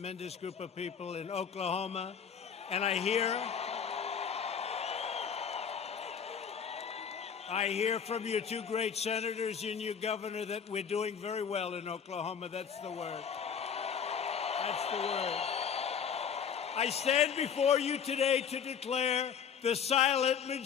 group of people in Oklahoma. And I hear from your two great senators and your governor that we're doing very well in Oklahoma. That's the word. I stand before you today to declare the silent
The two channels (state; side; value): quieter; right; 7.3 dB